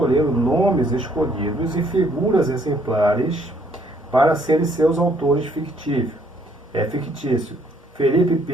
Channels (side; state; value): both; normal; correlation 0.66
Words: nomes escolhidos e figuras exemplares para serem seus autores fictícios. Felipe,